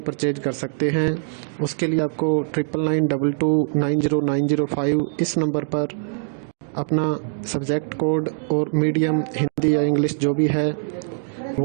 परचेज कर सकते हैं। उसके लिए आपको 9992290905 इस नंबर पर अपना सब्जेक्ट कोड और मीडियम हिंदी या इंग्लिश जो भी है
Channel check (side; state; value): left; silent; digital silence